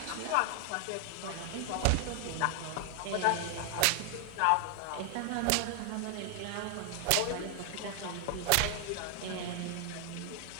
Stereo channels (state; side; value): different; both; correlation 0.00